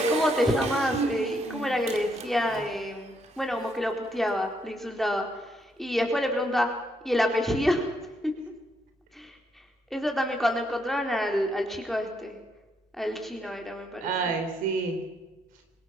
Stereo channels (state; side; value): normal; both; correlation 0.75